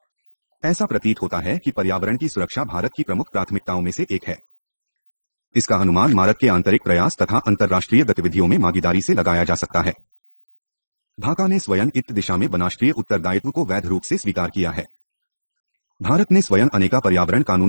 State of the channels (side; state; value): both; inverted; correlation -1.00